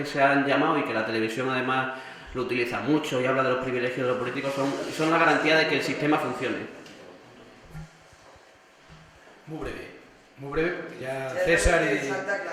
se han llamado y que la televisión además lo utiliza mucho y habla de los privilegios de los políticos, son la garantía de que el sistema funcione. Muy breve, porque ya César y...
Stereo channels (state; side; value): identical; both; correlation 1.00